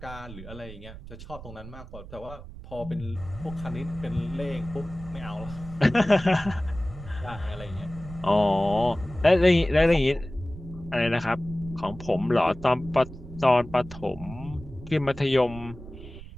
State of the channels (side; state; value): right; noise; rumble, 14 dB below the sound